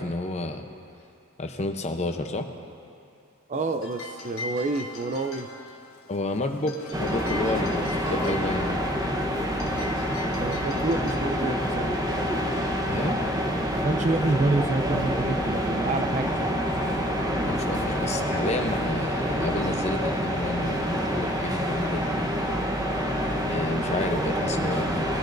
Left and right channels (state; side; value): normal; both; correlation 0.57